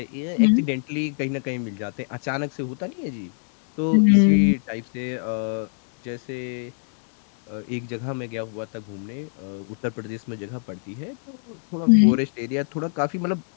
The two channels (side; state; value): right; silent; digital silence